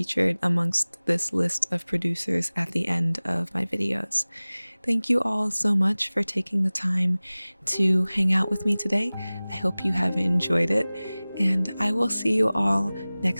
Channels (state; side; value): inverted; both; correlation -0.99